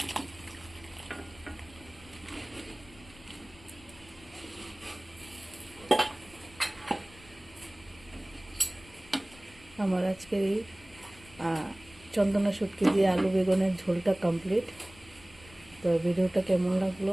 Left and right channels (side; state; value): left; noise; rumble, 22 dB below the sound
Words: আমার আজকের এই চন্দনা শুটকি দিয়ে আলু বেগুনের ঝোলটা কমপ্লিট। তো ভিডিওটা কেমন লাগলো